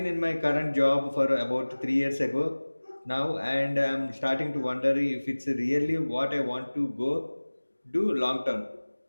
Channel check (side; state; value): both; inverted; correlation -1.00